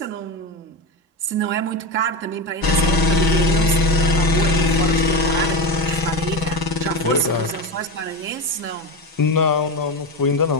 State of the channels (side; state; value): both; normal; correlation 0.18